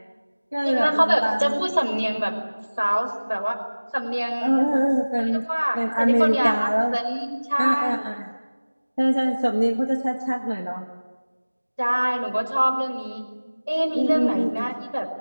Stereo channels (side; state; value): both; inverted; correlation -1.00